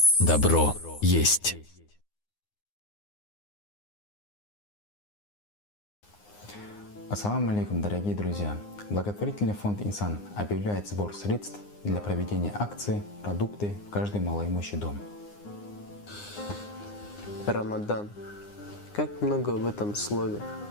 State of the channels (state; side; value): late; right; 9.7 ms